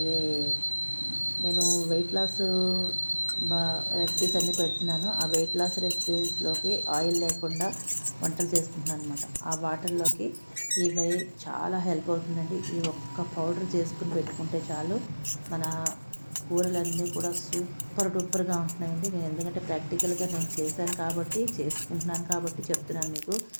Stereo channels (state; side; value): inverted; both; correlation -1.00